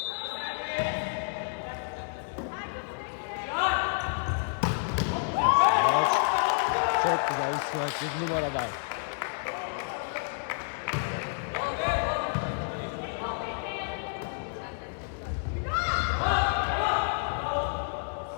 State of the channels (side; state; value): right; silent; digital silence